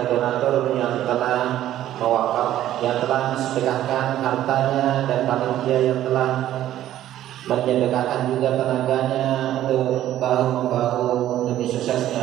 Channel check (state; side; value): quieter; left; 12.7 dB